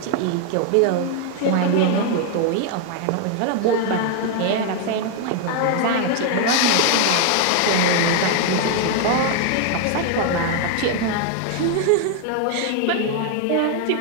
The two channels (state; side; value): different; both; correlation 0.00